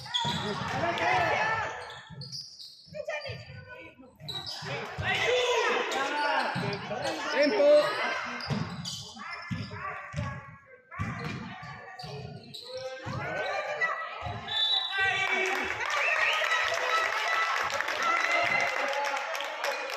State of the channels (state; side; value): identical; both; correlation 1.00